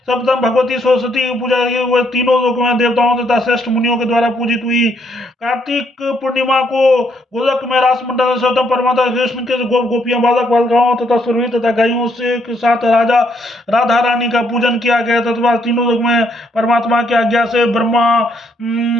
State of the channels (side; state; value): both; normal; correlation 0.72